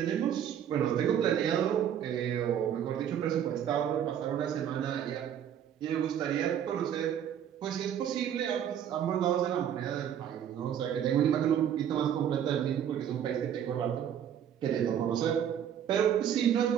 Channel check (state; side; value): quieter; left; 9.5 dB